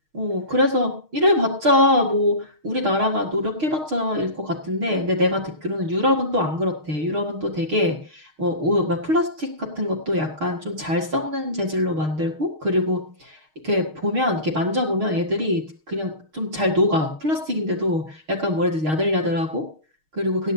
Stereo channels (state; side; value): late; left; 6.4 ms